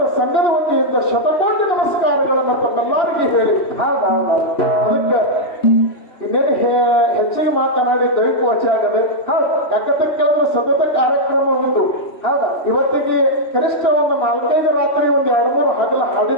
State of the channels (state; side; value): late; right; 3.1 ms